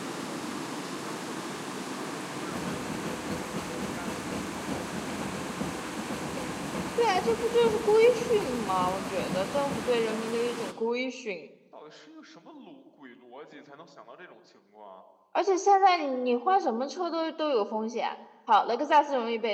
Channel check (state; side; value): identical; both; correlation 1.00